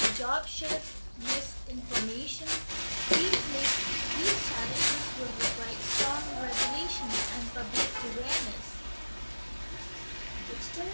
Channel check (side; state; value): both; inverted; correlation -1.00